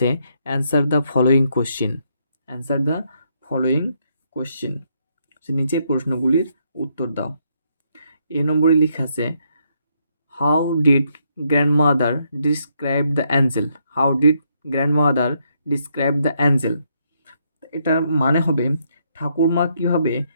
answer the following question. Answer the following question, নিচের প্রশ্নগুলির উত্তর দাও। এ নম্বরে লেখা আছে how did grandmother describe the Angel. How did grandmother describe the Angel. এটার মানে হবে ঠাকুরমা কীভাবে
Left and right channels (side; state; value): both; inverted; correlation -0.75